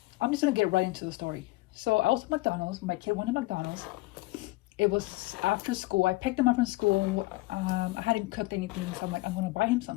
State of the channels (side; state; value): right; quieter; 21.0 dB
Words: I'm just gonna get right into the story. So I was at McDonald's. My kid wanted McDonald's. It was after school. I picked him up from school. I hadn't cooked anything, so I'm like, I'm gonna buy him